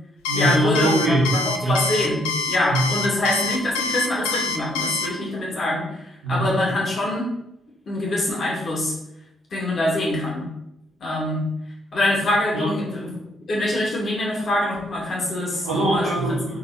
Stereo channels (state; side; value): normal; both; correlation 0.68